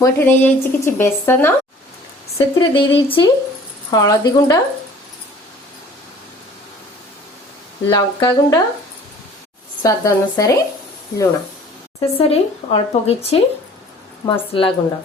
मुझे नहीं जाइए किसी बेसन से हलदी गुंड, लंका गुंड, स्वाद अनुसार लुण, शेष अल्प किछि मसला गुंड।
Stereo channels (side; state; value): both; normal; correlation 0.50